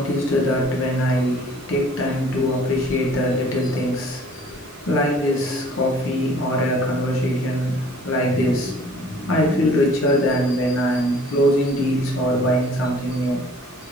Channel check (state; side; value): normal; both; correlation 0.53